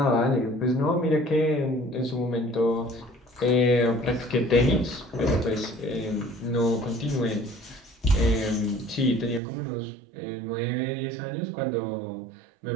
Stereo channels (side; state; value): left; drops out; at 9.4 s